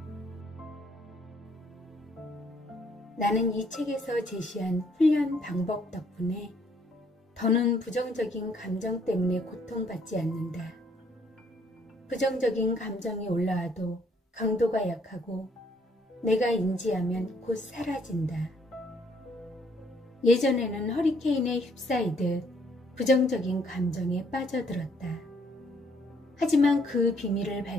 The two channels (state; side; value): normal; both; correlation 0.66